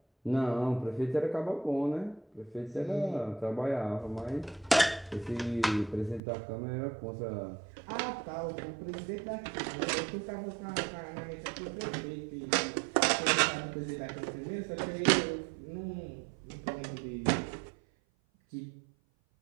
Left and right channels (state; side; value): drops out; left; at 6.2 s